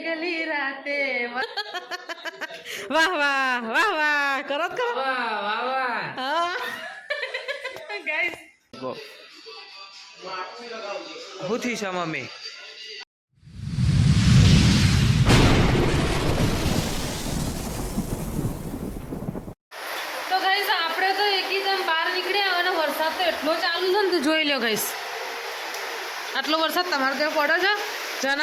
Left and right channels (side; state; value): both; identical; correlation 1.00